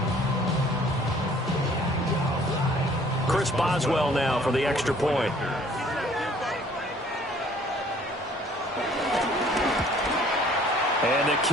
Chris Boswell now for the extra point. And the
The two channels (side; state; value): both; normal; correlation 0.56